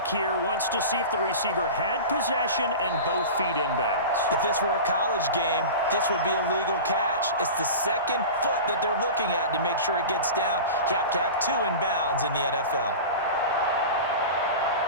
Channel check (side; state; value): both; inverted; correlation -0.31